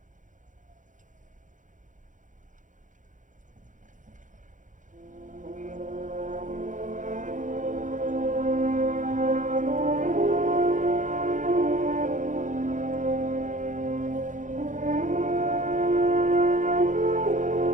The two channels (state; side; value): late; left; 0.37 ms